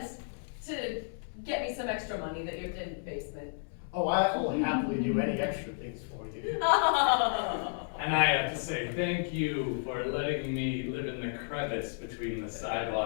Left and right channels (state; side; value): silent; right; digital silence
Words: to get me some extra money that you did in the basement. Oh, I will happily do any extra things for you. And I have to say thank you for letting me live in the crevice between the